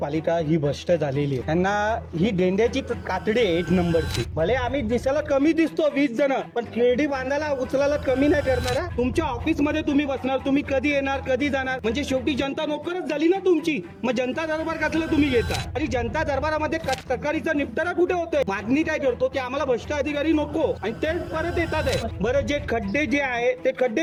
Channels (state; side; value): identical; both; correlation 1.00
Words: ही भ्रष्ट झालेली आहे। त्यांना ही गेंड्याची कातडी आहे 1 नंबरची। भले आम्ही दिसायला कमी दिसतो 20 जण, पण खेळडी बांधायला उचलायला कमी नाही करणार हा। तुमच्या ऑफिस मध्ये तुम्ही बसणार, तुम्ही कधी येणार कधी जाणार, म्हणजे शेवटी जनता नोकरच झाली ना तुमची। मग जनता दरबार कसला तुम्ही घेता, आणि जनता दरबारामध्ये तक्रारीचा निपटारा कुठे होतोय? मागणी काय करतो की आम्हाला भ्रष्ट अधिकारी नको, आणि ते परत येतात आहे। बरं, जे खड्डे जे आहे ते